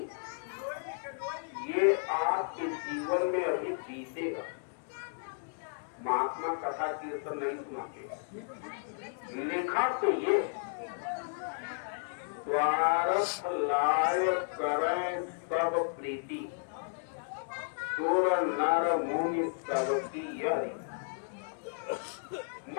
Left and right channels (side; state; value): right; silent; digital silence